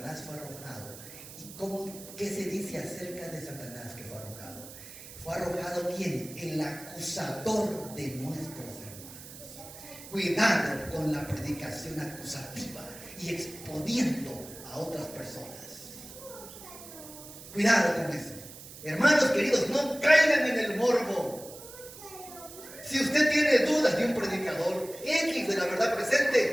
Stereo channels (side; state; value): right; noise; hiss, 15 dB below the sound